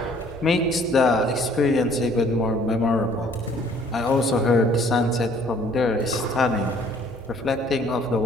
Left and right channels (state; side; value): normal; both; correlation 0.58